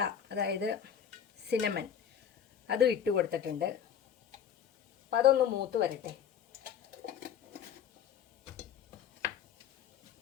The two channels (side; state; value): right; quieter; 8.6 dB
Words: അതായത് സിനമൻ, അതും ഇട്ട് കൊടുത്തിട്ടുണ്ട്. അപ്പം അതൊന്ന് മൂത്ത് വരട്ടെ.